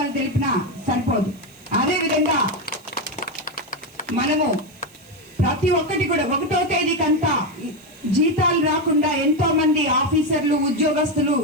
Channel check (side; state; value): right; noise; hiss, 27 dB below the sound